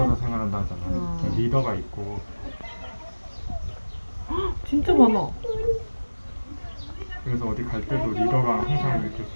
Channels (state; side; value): inverted; both; correlation -1.00